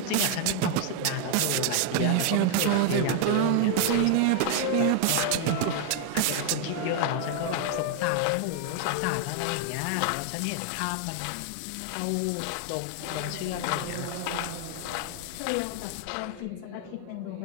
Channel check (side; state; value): both; different; correlation 0.00